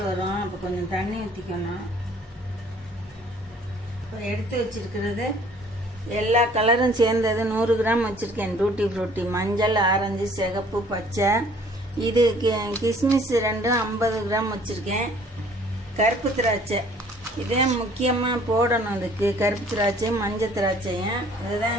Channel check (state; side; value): normal; both; correlation 0.56